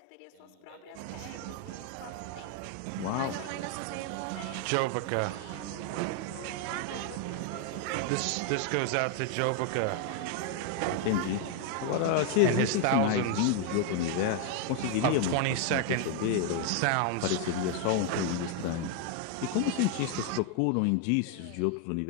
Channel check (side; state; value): both; different; correlation 0.00